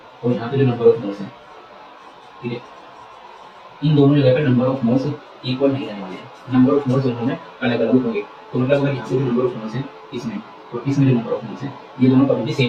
और यहाँ पे जो नंबर ऑफ मोल्स हैं, ठीक है, इन दोनों जगह पे नंबर ऑफ मोल्स इक्वल नहीं रहने वाले हैं, नंबर ऑफ मोल्स दोनों में अलग अलग होंगे। तो मतलब अगर यहाँ पे जो नंबर ऑफ मोल्स है इसमें, तो इसमें जो नंबर ऑफ मोल्स है ये दोनों कभी भी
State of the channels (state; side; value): identical; both; correlation 1.00